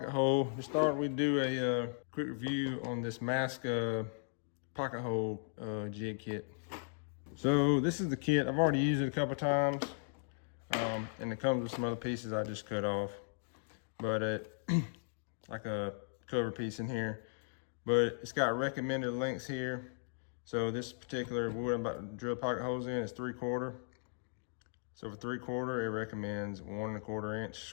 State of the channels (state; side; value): silent; right; digital silence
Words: hole. To start, we do a quick review on this Masca pocket hole jig kit. So this is the kit. I've already used it a couple times, and it comes with some other pieces I just cut off, but like a cover piece in here. But it's got recommended lengths here. So this particular wood I'm about to drill pocket holes in is 3/4. So for 3/4, it recommends 1 1/4 inch